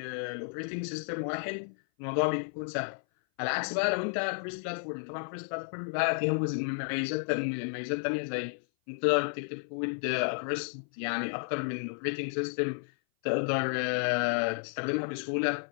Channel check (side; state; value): right; silent; 56 dB below the other